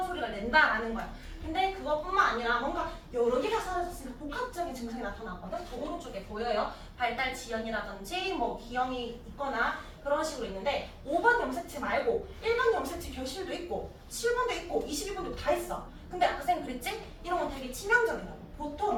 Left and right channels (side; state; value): both; identical; correlation 1.00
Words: 소리가 낸다라는 거야. 근데 그것뿐만 아니라 뭔가 여러 개가 사라졌으니까 복합적인 증상이 나타나거든. 그 오른쪽에 보여요. 발달 지연이라든지 뭐 기형이 있거나 그런 식으로 있는데 5번 염색체 말고 1번 염색체 결실도 있고 7번도 있고 21번도 다 있어. 근데 아까 쌤 그랬지? 이런 건 되게 치명적이라고.